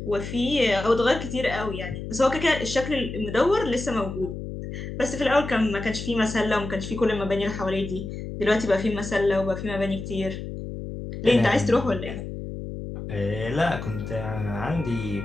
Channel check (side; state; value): left; noise; hum, 8 dB below the sound